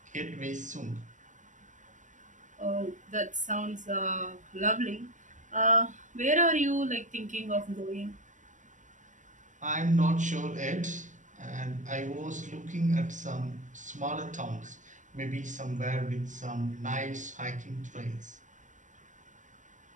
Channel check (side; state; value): left; late; 0.37 ms